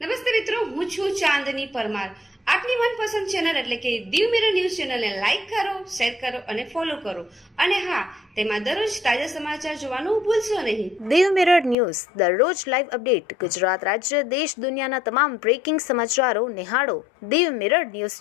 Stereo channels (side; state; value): right; drops out; at 11.8 s